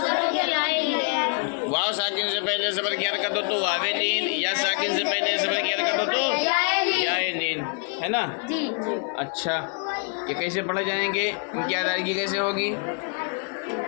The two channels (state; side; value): quieter; right; 39.6 dB